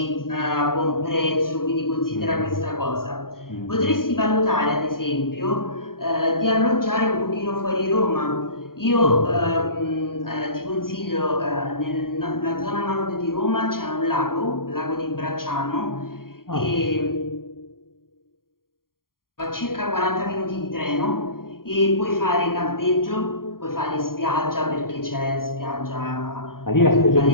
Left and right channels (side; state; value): right; late; 0.91 ms